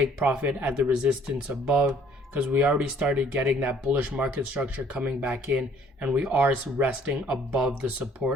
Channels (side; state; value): both; normal; correlation 0.59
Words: profit at the resistance above, because we already started getting that bullish market structure coming back in, and we are resting above the